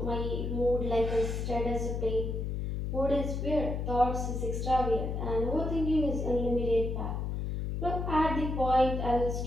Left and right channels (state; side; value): noise; left; hum, 2 dB below the sound